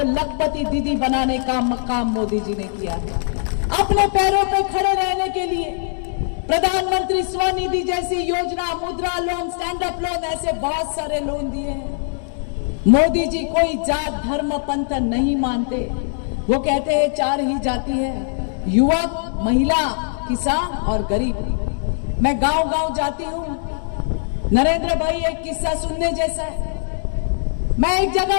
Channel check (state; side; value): silent; right; digital silence